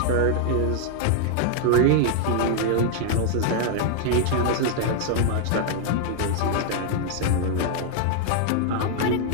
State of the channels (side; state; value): both; different; correlation 0.00